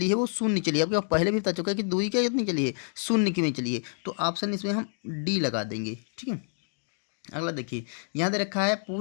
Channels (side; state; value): right; silent; 56 dB below the other